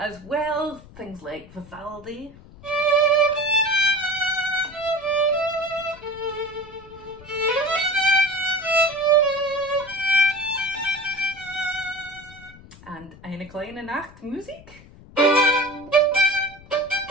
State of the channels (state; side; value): noise; left; rumble, 21 dB below the sound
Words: well, things like Vivaldi. And Eine kleine Nachtmusik.